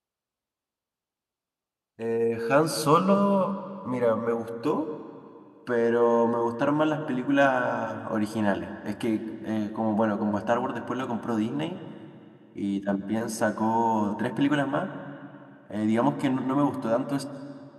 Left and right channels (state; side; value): identical; both; correlation 1.00